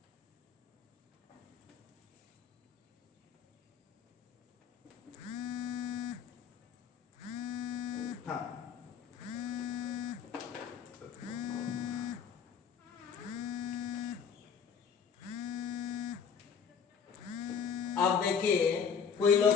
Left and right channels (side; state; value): right; quieter; 6.8 dB